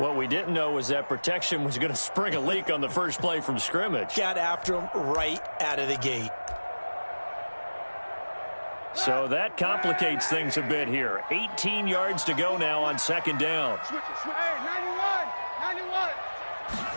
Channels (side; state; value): both; inverted; correlation -1.00